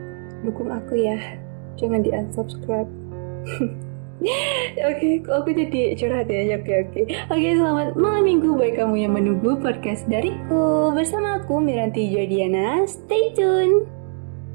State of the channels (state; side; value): silent; left; 59 dB below the other